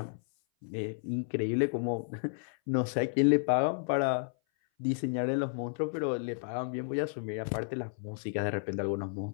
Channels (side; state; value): right; silent; 56 dB below the other